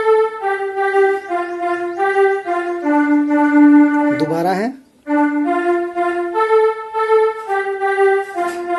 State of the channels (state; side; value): identical; both; correlation 1.00